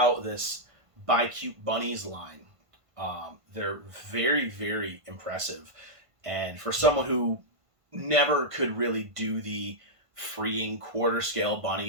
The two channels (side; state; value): left; late; 1.5 ms